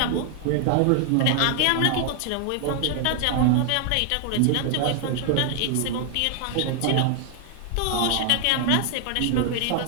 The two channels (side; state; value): both; different; correlation 0.00